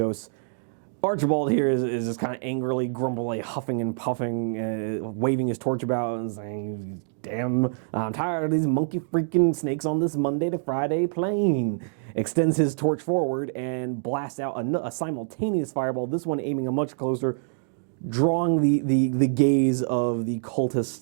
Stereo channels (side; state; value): left; silent; digital silence